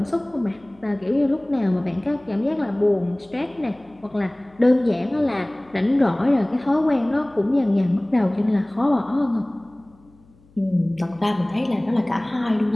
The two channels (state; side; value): noise; left; hum, 29 dB below the sound